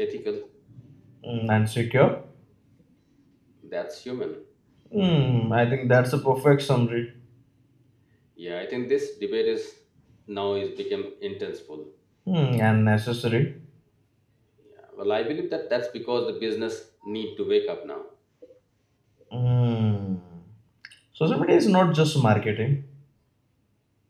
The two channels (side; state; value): both; identical; correlation 1.00